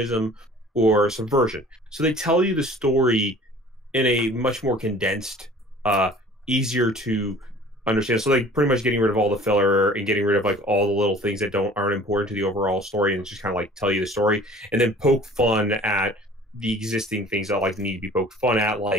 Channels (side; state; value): both; normal; correlation 0.48